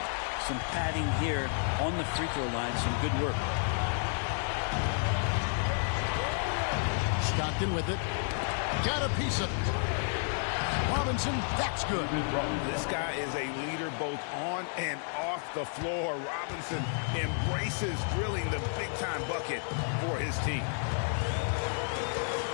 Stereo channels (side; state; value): right; silent; 57 dB below the other